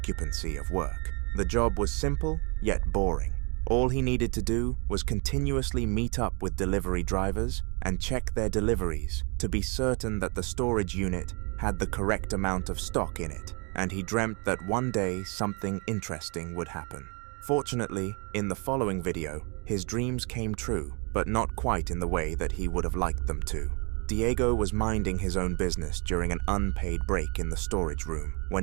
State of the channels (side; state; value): left; quieter; 33.6 dB